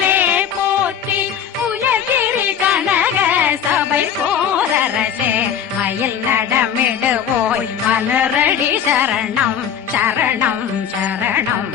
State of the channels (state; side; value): quieter; right; 8.4 dB